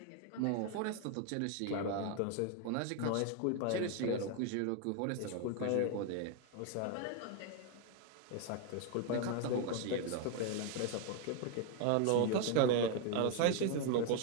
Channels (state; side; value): different; both; correlation 0.01